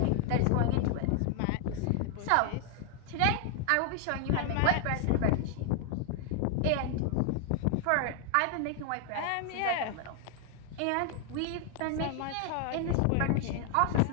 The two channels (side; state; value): both; different; correlation 0.00